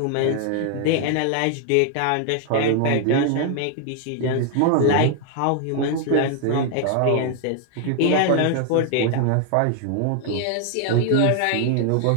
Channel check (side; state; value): both; different; correlation 0.00